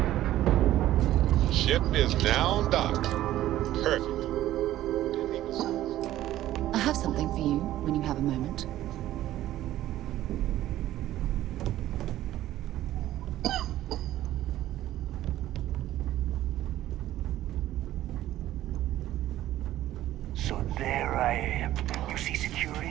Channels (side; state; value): left; quieter; 14.0 dB